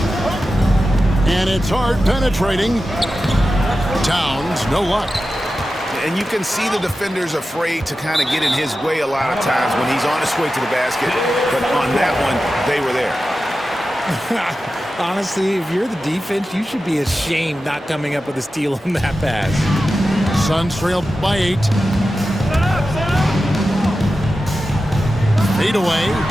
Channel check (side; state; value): both; normal; correlation 0.93